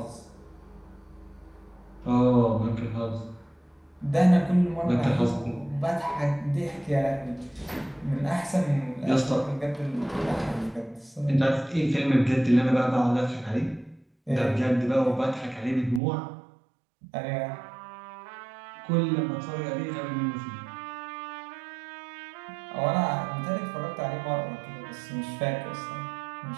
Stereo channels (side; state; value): left; drops out; at 16.0 s